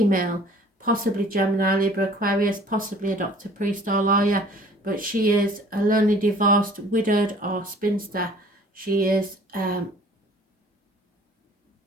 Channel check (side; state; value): both; normal; correlation 0.51